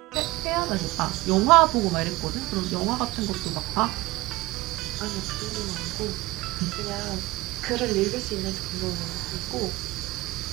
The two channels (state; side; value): quieter; left; 20.1 dB